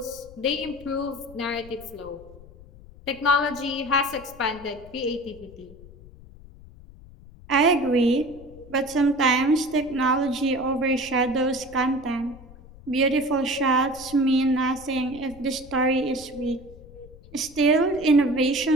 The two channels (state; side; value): noise; left; rumble, 20 dB below the sound